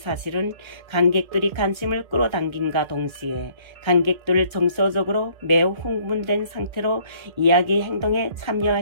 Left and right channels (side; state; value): left; late; 1.3 ms